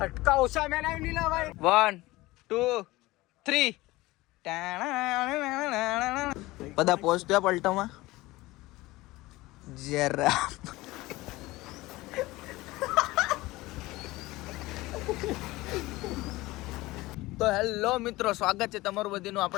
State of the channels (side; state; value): right; quieter; 19.5 dB